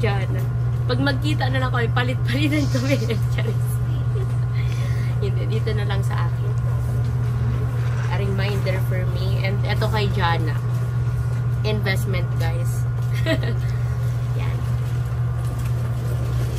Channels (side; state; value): both; identical; correlation 1.00